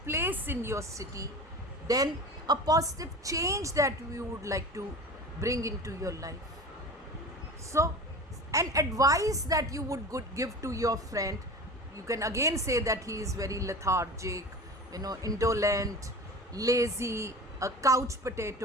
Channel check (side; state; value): both; normal; correlation 0.34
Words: place in your city. Then a positive change that you would like to bring into your life. So an advice that you would give to your friend. You can again say that he is very lethargic, indolent, lazy, a couch